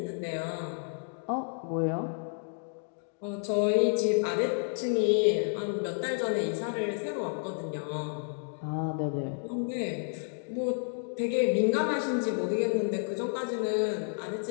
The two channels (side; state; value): right; silent; 57 dB below the other